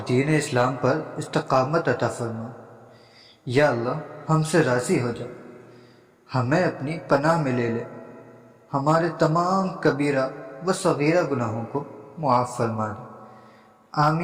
دین اسلام پر استقامت عطا فرما۔ یا اللہ ہم سے راضی ہو جا، ہمیں اپنی پناہ میں لے لے، ہمارے تمام کبیرہ و صغیرہ گناہوں کو معاف فرما دے۔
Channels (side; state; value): both; identical; correlation 1.00